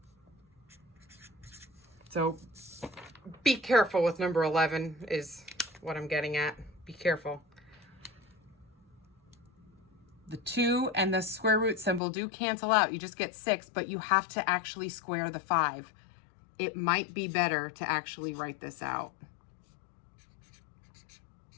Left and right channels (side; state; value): right; drops out; at 12.0 s